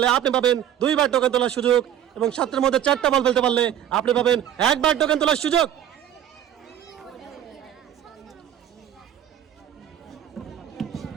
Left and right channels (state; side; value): quieter; left; 10.7 dB